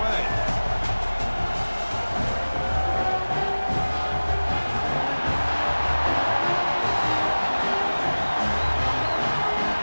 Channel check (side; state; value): both; inverted; correlation -1.00